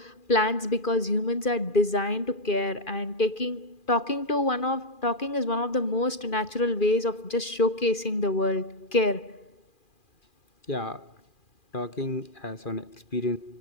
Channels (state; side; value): late; right; 2.4 ms